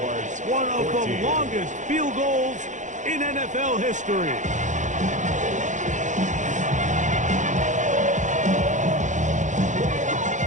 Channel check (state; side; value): late; left; 0.36 ms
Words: One of the longest field goals in NFL history.